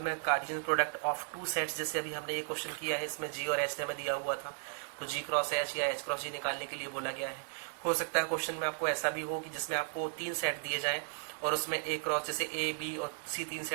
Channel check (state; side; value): silent; left; digital silence